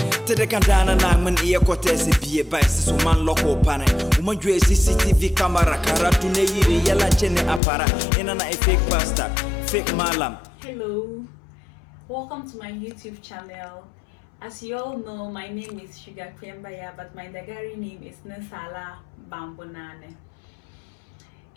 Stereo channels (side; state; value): right; drops out; at 7.6 s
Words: Tede kandana na man iya kote se bie ba se man loko pane. Uma jwe CCTV camera karatu ne yiri yala chene apara. Ina na fake pastor, fake malam. Hello, welcome to my YouTube channel. As you all know, my name is Sugar Kwembaya, but my Dagari name is Nesala Bambonane.